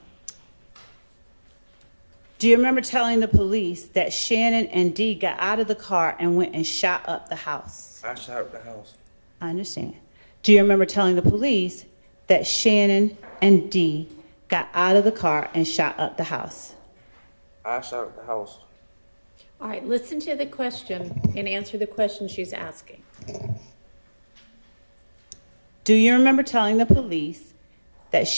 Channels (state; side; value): inverted; both; correlation -1.00